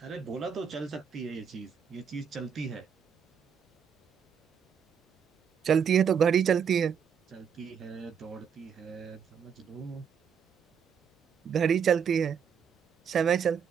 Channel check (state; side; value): quieter; left; 7.4 dB